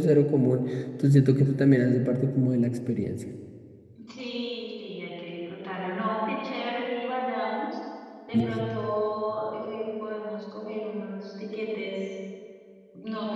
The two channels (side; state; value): both; identical; correlation 1.00